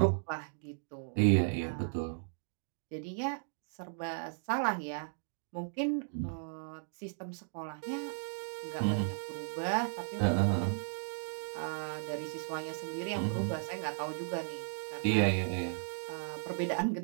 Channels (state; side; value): silent; left; digital silence